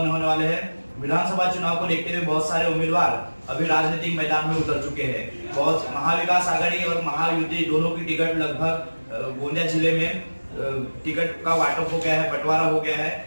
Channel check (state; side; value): inverted; both; correlation -1.00